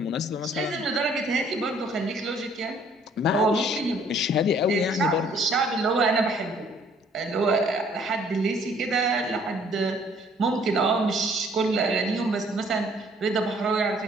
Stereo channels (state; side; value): normal; both; correlation 0.60